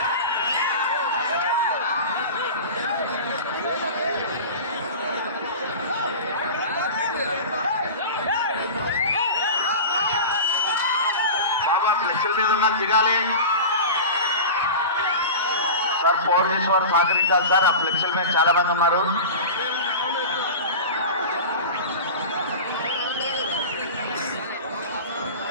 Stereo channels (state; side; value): inverted; both; correlation -0.31